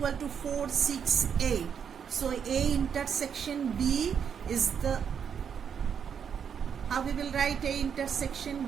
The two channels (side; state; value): left; quieter; 7.5 dB